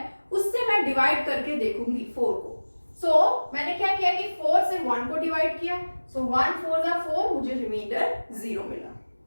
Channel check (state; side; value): inverted; both; correlation -1.00